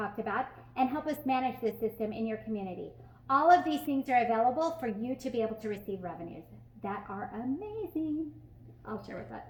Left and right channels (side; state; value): both; identical; correlation 1.00